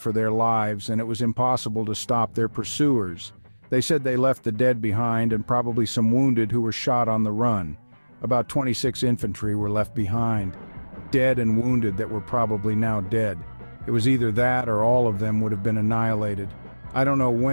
their lives and it was impossible to stop their pursuers. They said they left the dead behind and probably some wounded who were shot on the run. About 26 infantry were left behind, dead and wounded that were probably now dead. It was either that or all of them would have been annihilated. I don't know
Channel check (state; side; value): inverted; both; correlation -1.00